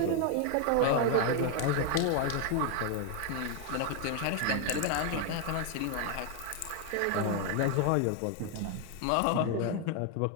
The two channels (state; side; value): different; both; correlation 0.01